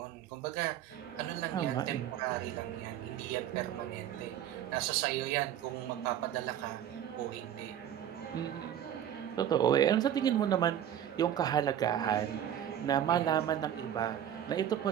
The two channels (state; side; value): quieter; left; 10.5 dB